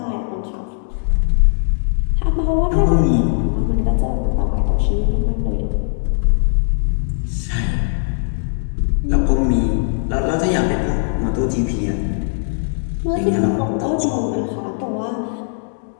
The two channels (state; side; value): silent; right; digital silence